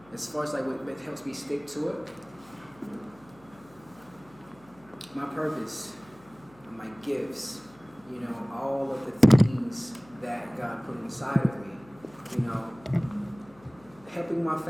As far as like what helps me stick to it, my purpose, my gifts, you know, all of the things that God put inside of me, you know, helping my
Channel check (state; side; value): noise; left; hum, 26 dB below the sound